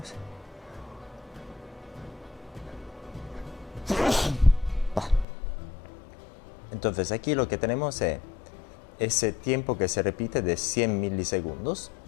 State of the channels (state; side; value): drops out; right; at 5.2 s